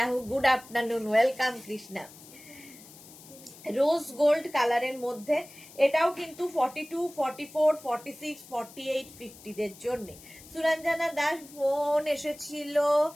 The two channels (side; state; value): left; noise; hiss, 20 dB below the sound